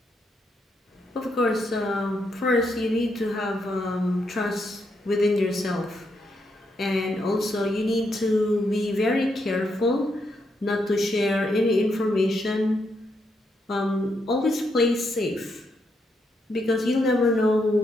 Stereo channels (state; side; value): normal; both; correlation 0.79